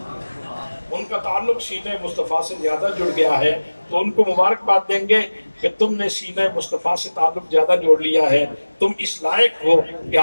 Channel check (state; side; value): inverted; both; correlation -1.00